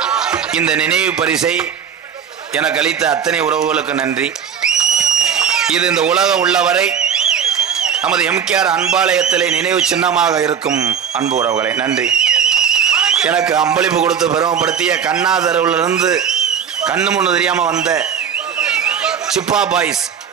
இந்த நினைவு பரிசை எனக்கு அளித்த அத்தனை உறவுகளுக்கு நன்றி. இது இந்த உலகம் உள்ளவரை நமது எம்கேஆர் அன்பாலயத்திலே நினைவு சின்னமாக இருக்கும் அன்பு உறவுகளை நன்றி. எனக்கு அம்பளிப்பு கொடுத்து பெருமைப்படுத்திய கண்ணாதரவிலிருந்து கண்ணு முன்னு தெரியாம வந்த சிப்பா பாய்ஸ்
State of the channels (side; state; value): left; quieter; 7.6 dB